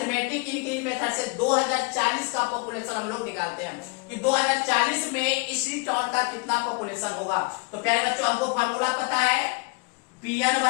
इंक्रीज मेथड से 2040 का पॉपुलेशन हम लोग निकालते हैं कि 2040 में इसी टाउन का कितना पॉपुलेशन होगा। तो प्यारे बच्चों हमको फार्मूला पता है, Pn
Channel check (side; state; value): right; quieter; 32.2 dB